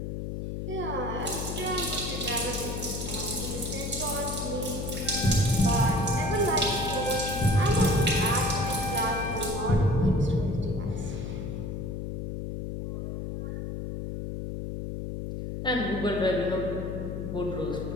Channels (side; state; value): left; noise; hum, 5 dB below the sound